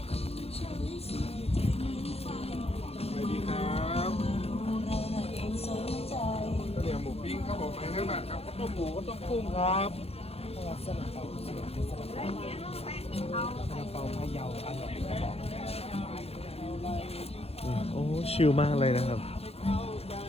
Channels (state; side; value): late; right; 0.29 ms